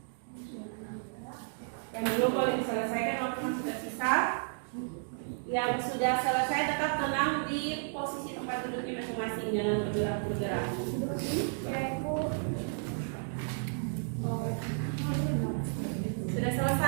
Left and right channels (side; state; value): left; silent; digital silence